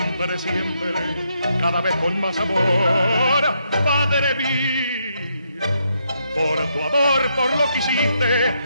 siempre, cada vez con más amor, Padre mío, por tu amor, por lo que hiciste,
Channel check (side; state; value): both; inverted; correlation -0.77